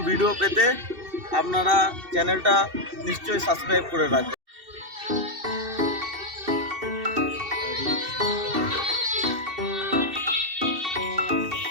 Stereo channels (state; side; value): late; left; 2.7 ms